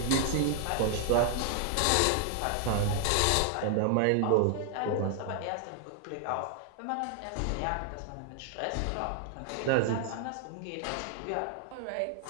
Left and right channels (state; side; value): different; both; correlation 0.00